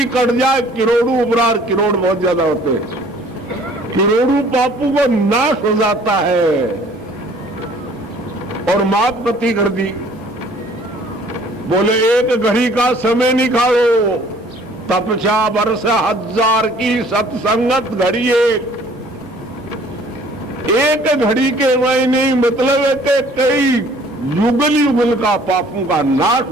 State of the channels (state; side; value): normal; both; correlation 0.55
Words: कट जाए करोड़ों उपरार। करोड़ बहुत ज्यादा होते हैं, करोड़ों पापों को नाश हो जाता है। और माप गति कर दी। बोले एक घड़ी का समय निकालो, तपस्या वर्ष हजार की सत्संगत घड़ी एक घड़ी के मायने मतलब है कि कई युगल युगल का पापों का नाश